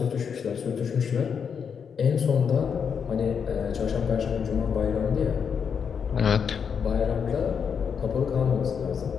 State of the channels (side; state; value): right; quieter; 6.8 dB